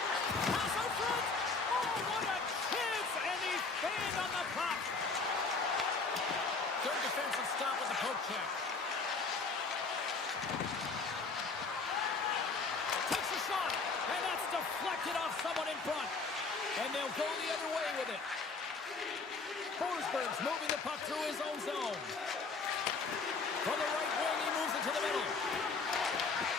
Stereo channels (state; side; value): quieter; right; 4.3 dB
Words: Pass out front. Oh, what a chance! And he's banged on the puck. Third defensive stop with the poke check. Takes a shot, and that's deflected off someone out in front. And they'll go the other way with it. Forsberg's moving the puck through his own zone. From the right wing, he moves it to the middle.